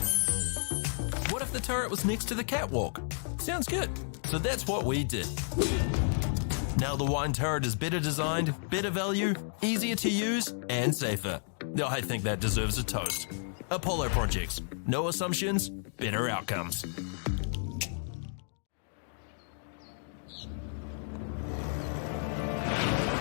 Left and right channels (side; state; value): right; silent; digital silence